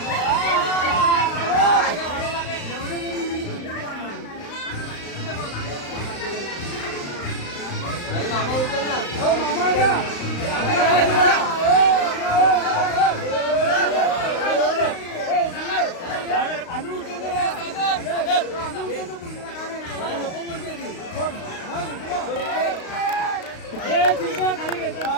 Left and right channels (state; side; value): late; right; 35 ms